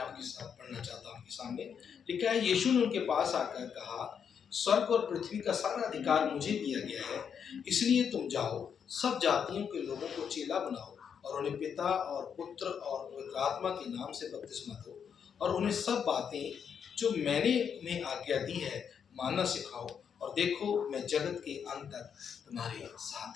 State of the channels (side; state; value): right; quieter; 7.3 dB